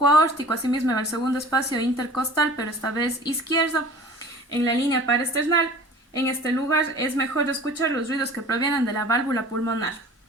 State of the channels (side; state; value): both; normal; correlation 0.43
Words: aórtico, asimismo en el segundo espacio intercostal, pero esta vez izquierdo, en la línea paraesternal. En este lugar es mejor escuchar los ruidos que provienen de la válvula pulmonar.